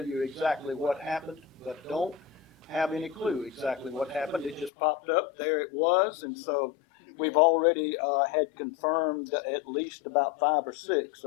you exactly what happened, but don't have any clue exactly what happened. It just popped up, there it was, and so we've already had confirmed at least about 5 or 6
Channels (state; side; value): drops out; right; at 4.7 s